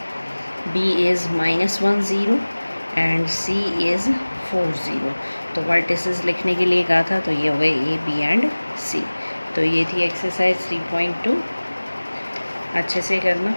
B is -1 0 and C is 4 0। तो वर्टिसेस लिखने के लिए कहा था, तो ये हो गए ए बी एंड सी। तो ये थी एक्सरसाइज 3.2, अच्छे से करना।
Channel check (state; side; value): inverted; both; correlation -1.00